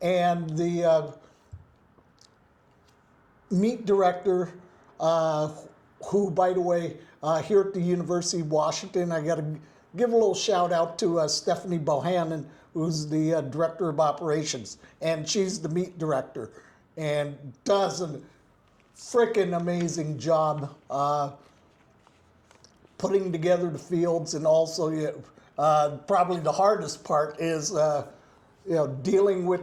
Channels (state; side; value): identical; both; correlation 1.00